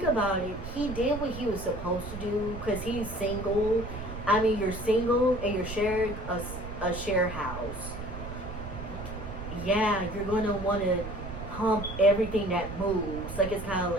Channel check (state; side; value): noise; right; rumble, 9 dB below the sound